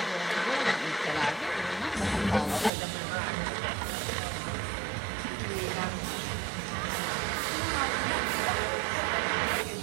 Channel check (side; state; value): left; drops out; at 2.7 s